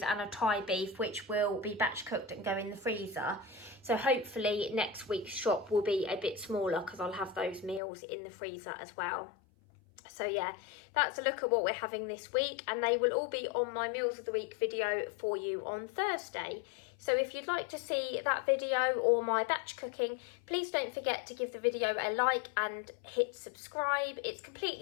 and a Thai beef, which will be batch cooked and go in the freezer. So hopefully next week's shop will be a bit smaller because I'll have those meals in the freezer as well. So yeah, that's a look at what we're having this week, and they will all be on my Meals of the Week video for you on Thursday. So if you'd like to see that video or my batch cooking, please don't forget to give the video a like and hit subscribe. It's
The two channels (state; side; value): drops out; right; at 7.8 s